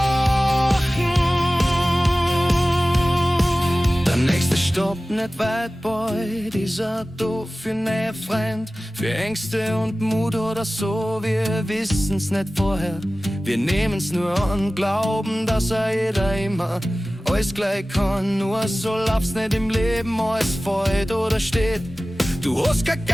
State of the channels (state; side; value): normal; both; correlation 0.97